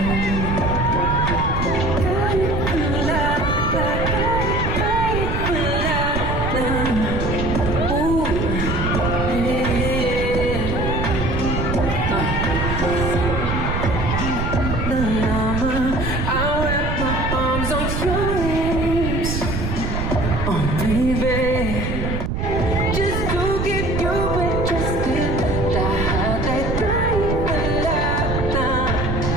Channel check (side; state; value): right; noise; rumble, 1 dB below the sound